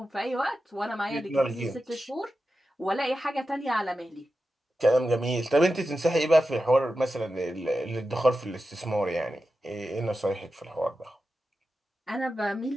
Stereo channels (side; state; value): both; normal; correlation 0.91